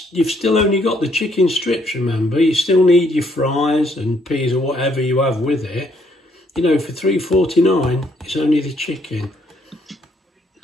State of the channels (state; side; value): normal; both; correlation 0.69